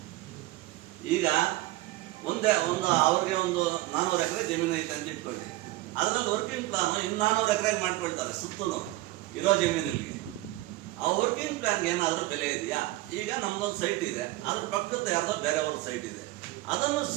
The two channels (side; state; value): left; quieter; 18.1 dB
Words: ಈಗ ಅವ್ರಿಗೆ ಒಂದು 400 ಎಕರೆ ಜಮೀನು ಐತೆ ಅಂತ ಇಟ್ಕೊಳ್ಳಿ. ಅದರಲ್ಲಿ ವರ್ಕಿಂಗ್ ಪ್ಲಾನ್ ಇನ್ನು 400 ಎಕರೆ ಮಾಡ್ಕೊಳ್ತಾರೆ ಸುತ್ತಲೂ ಇರೋ ಜಮೀನಿಗೆ. ಆ ವರ್ಕಿಂಗ್ ಪ್ಲಾನ್ಗೆ ಏನಾದರೂ ಬೆಲೆ ಇದೆಯಾ? ಈಗ ನಮ್ದೊಂದು ಸೈಟ್ ಇದೆ, ಅದ್ರ ಪಕ್ಕದ ಯಾರ್ದೋ ಬೇರೆಯವ್ರ ಸೈಟ್ ಇದೆ, ಅದನ್ನು